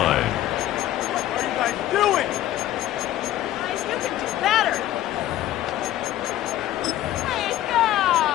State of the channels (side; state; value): right; quieter; 13.5 dB